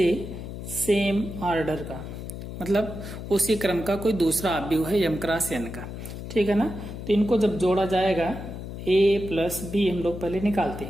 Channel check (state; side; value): noise; left; hum, 9 dB below the sound